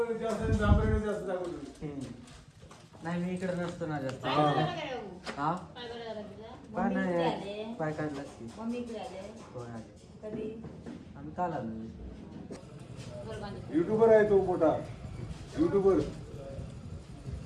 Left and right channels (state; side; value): identical; both; correlation 1.00